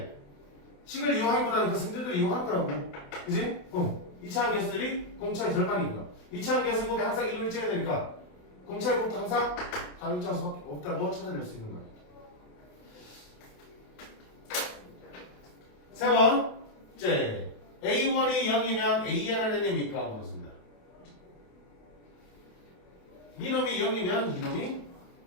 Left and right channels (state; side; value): late; right; 29 ms